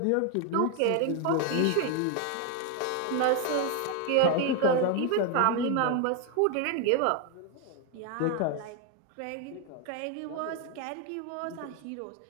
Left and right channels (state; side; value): different; both; correlation 0.01